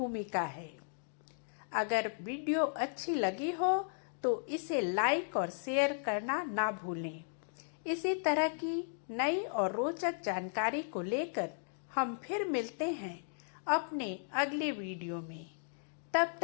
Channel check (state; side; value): silent; right; digital silence